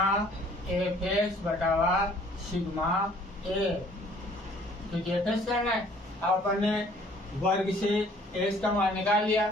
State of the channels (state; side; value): normal; both; correlation 0.57